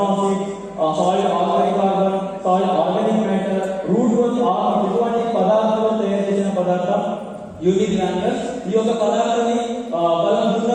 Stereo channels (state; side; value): identical; both; correlation 1.00